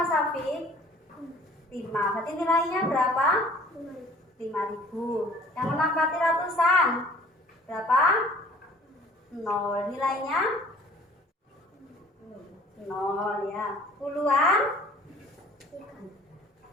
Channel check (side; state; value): both; normal; correlation 0.51